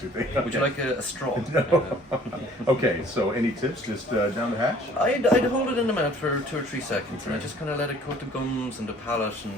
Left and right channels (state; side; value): normal; both; correlation 0.54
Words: Okay. Would you like a straw? No. Okay, so any tips just down the hatch? I'd hold it in the mouth for 2 or 3 seconds, and I just kind of let it coat the gums and the palate